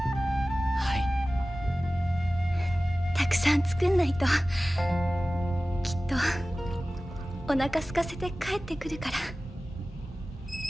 い。たくさん作んないときっとお腹空かせて帰ってくるから。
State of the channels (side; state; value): both; normal; correlation 0.96